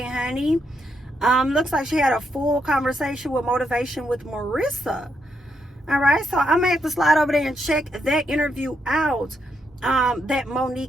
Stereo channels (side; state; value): both; normal; correlation 0.79